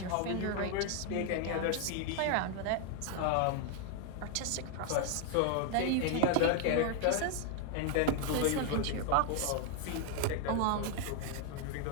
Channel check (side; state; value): both; different; correlation 0.01